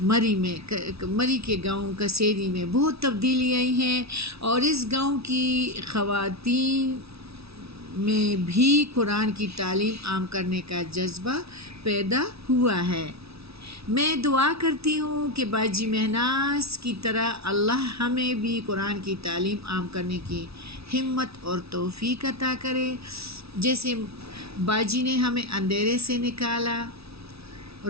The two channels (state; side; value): late; left; 0.77 ms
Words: مری کے گاؤں کسیری میں بہت تبدیلی آئی ہیں، اور اس گاؤں کی خواتین میں بھی قرآن کی تعلیم عام کرنے کا جذبہ پیدا ہوا ہے۔ میں دعا کرتی ہوں کہ باجی مہناز کی طرح اللہ ہمیں بھی قرآن کی تعلیم عام کرنے کی ہمت اور توفیق عطا کرے، جیسے باجی نے ہمیں اندھیرے سے نکالا،